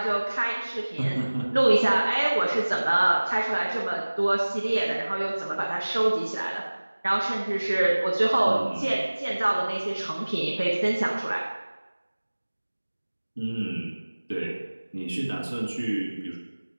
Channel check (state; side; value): inverted; both; correlation -1.00